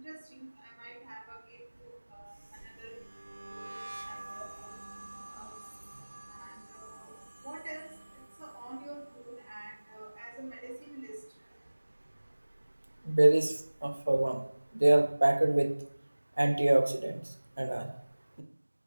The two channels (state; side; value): inverted; both; correlation -1.00